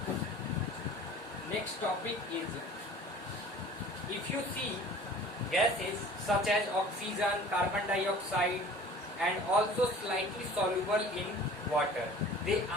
Next topic is, if you see gases such as oxygen, carbon dioxide, and also slightly soluble in water, they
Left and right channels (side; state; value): both; normal; correlation 0.45